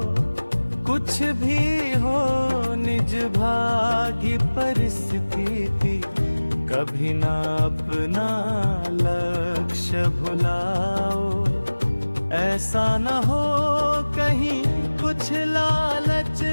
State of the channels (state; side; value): inverted; both; correlation -1.00